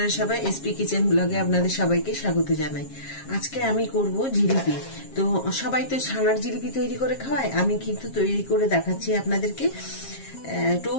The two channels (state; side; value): late; right; 7.4 ms